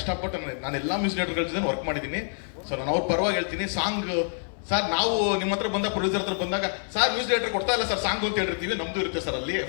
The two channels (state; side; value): silent; right; 57 dB below the other